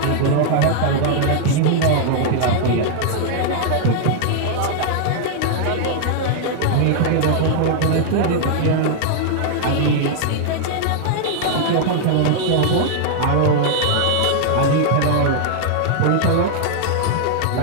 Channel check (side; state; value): both; different; correlation -0.01